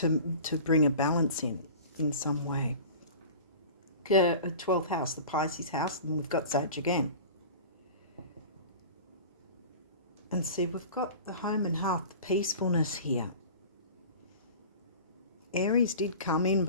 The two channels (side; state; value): both; inverted; correlation -0.38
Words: bring a balance in some way. 12th house, the Pisces house, and we've got Sag again. And see, we've got the home and hearth, the peacefulness here. Aries did come in,